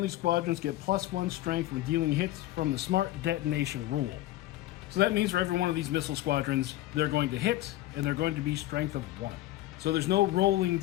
squadrons get +1 strength when dealing hits from the smart detonation rule. So that means for every one of these missile squadrons, they're going to hit, and they're going to be strength of 1. So there's no rolling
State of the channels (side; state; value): right; quieter; 15.5 dB